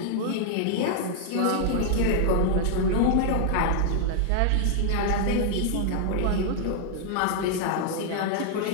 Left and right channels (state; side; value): different; both; correlation -0.01